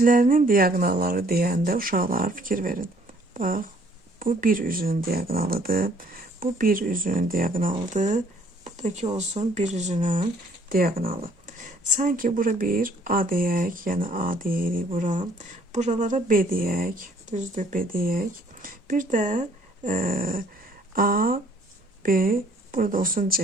diagonalları deyəndə uşaqlar fikir verin. Bax, bu bir üzünün diagonalıdır. Bu bir üzünün diagonalıdır. Buradakı olsun bir üzünün diagonalı. Sanki bura bir A deyək, yəni A deyirik bura. Buralara B deyək, düzdür B deyək. Bir də A, B, burada olsun C,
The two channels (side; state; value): both; normal; correlation 0.61